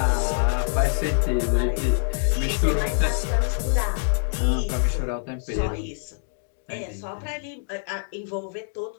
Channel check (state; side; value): silent; right; digital silence